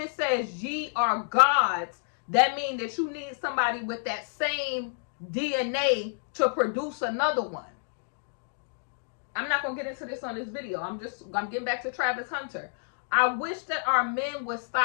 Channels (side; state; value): right; silent; digital silence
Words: says ye are gods, that means that you need somebody with that same DNA to produce another one. I'm not going to get into this on this video. I'm getting back to Travis Hunter. I wish that our men would